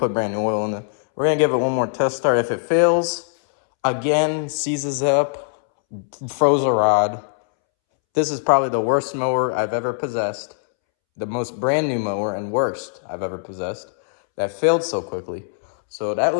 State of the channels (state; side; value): silent; right; 65 dB below the other